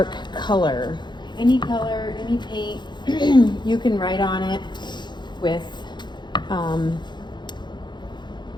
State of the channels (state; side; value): late; right; 0.21 ms